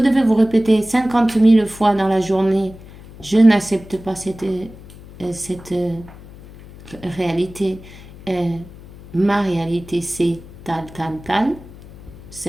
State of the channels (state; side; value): noise; left; hum, 19 dB below the sound